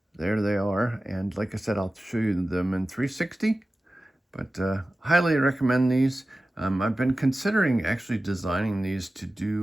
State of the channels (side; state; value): both; normal; correlation 0.95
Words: There they are. And like I said, I'll show you them in 360. But highly recommend these. I've been considering actually designing these to